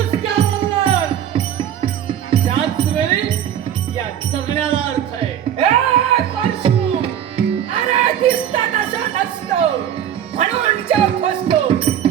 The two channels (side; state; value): left; quieter; 10.0 dB